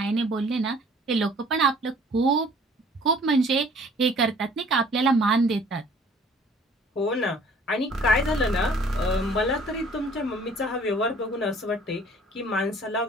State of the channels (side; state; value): both; normal; correlation 0.54